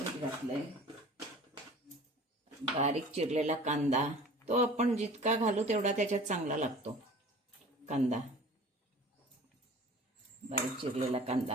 घातलंय. बारीक चिरलेला कांदा, तो आपण जितका घालू तेवढा त्याच्यात चांगला लागतो कांदा. बारीक चिरलेला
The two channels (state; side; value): normal; both; correlation 0.44